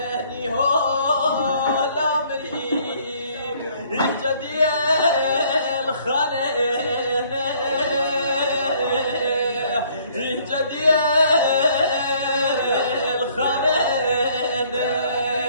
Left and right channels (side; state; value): both; inverted; correlation -0.61